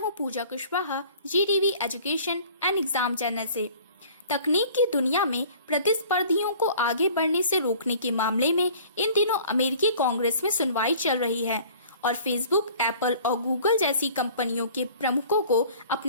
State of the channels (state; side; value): inverted; both; correlation -0.49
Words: Pooja Kushwaha, GTV education and exam channel से। तकनीक की दुनिया में प्रतिस्पर्धियों को आगे बढ़ने से रोकने के मामले में इन दिनों अमेरिकी कांग्रेस में सुनवाई चल रही है और फेसबुक, एप्पल और गूगल जैसी कंपनियों के प्रमुखों को